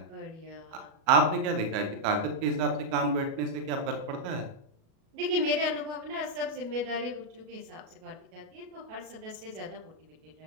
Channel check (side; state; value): left; late; 37 ms